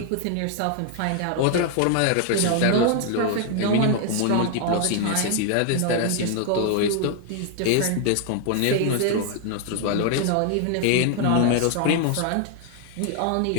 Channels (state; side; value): different; both; correlation 0.00